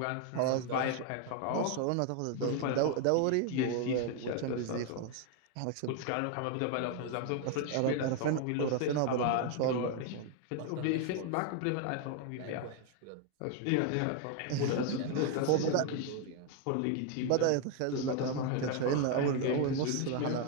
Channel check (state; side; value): different; both; correlation 0.01